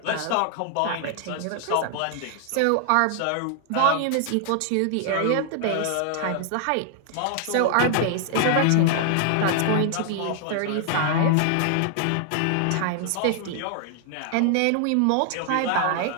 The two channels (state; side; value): different; both; correlation 0.00